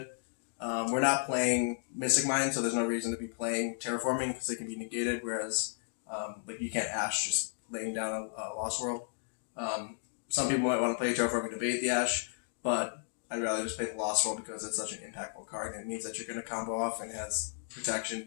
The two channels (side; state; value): right; silent; digital silence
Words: We're not playing Mystic Mine, so there's no reason to be playing Terraforming because they can be negated, whereas like you can't Ash just laying down a Lost World. Some people might want to play Terraforming to bait the Ash, but I'd rather just play the Lost World because it's such an impactful card, and it means that you're going to combo off and has protection,